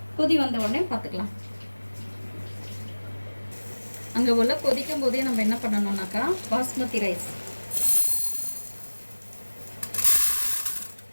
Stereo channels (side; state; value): both; inverted; correlation -1.00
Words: கொதி வந்த உடனே பார்த்துக்கலாம். அங்கே ஒலை கொதிக்கும் போதே நம்ம என்ன பண்ணணும்னாக்கா பாஸ்மதி ரைஸ்